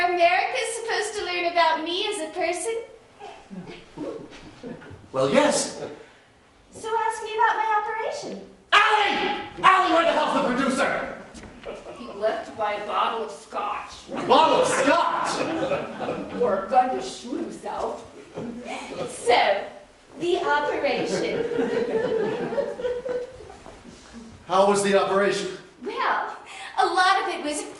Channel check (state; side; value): identical; both; correlation 1.00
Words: America's supposed to learn about me as a person? Well, yes. So ask me about my operation. Allie! Allie, where the hell's the producer? He left to buy a bottle of scotch. A bottle of scotch! Or a gun to shoot himself. So, the operation. How was the operation? Well, a lot of it was